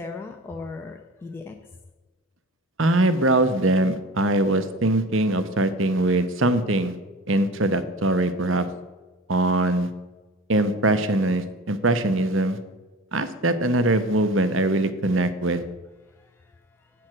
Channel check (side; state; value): both; normal; correlation 0.37